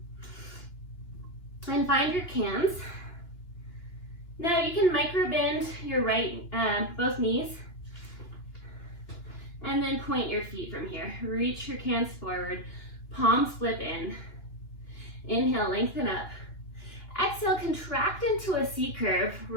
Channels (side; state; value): right; late; 2.9 ms